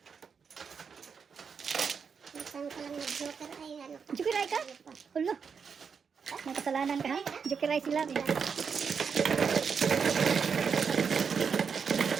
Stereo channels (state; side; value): quieter; left; 6.2 dB